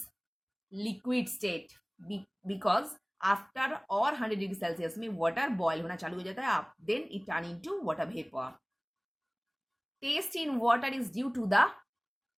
liquid state. Because after or 100 degree Celsius में water boil होना चालू हो जाता है, then it turn into water vapor. Taste in water is due to the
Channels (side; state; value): both; identical; correlation 1.00